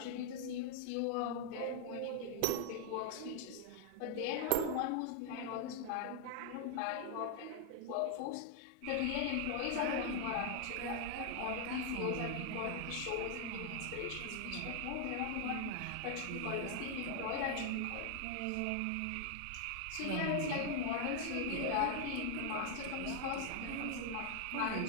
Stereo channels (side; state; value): both; different; correlation 0.00